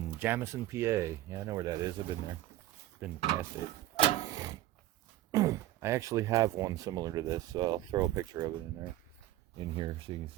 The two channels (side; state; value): left; quieter; 14.9 dB